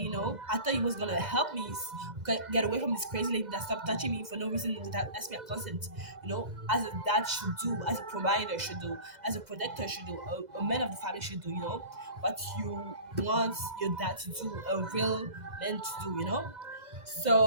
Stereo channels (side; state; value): left; late; 2.0 ms